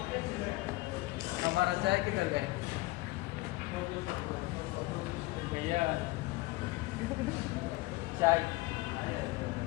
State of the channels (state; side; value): quieter; right; 20.9 dB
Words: हमारा चाय किधर गए भैया चाय